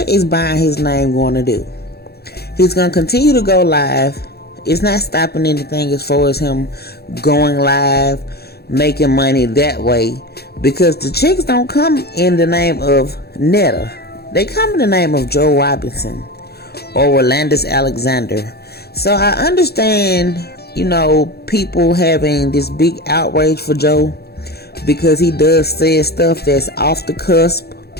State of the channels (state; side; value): late; right; 0.46 ms